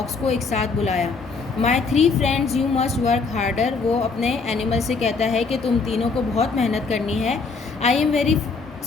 को एक साथ बुलाया। माई 3 friends you must work harder, वो अपने एनिमल से कहता है कि तुम तीनों को बहुत मेहनत करनी है। I am very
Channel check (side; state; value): right; quieter; 4.5 dB